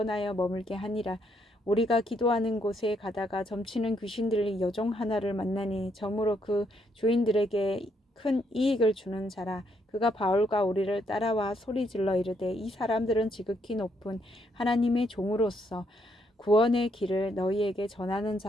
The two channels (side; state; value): both; normal; correlation 0.74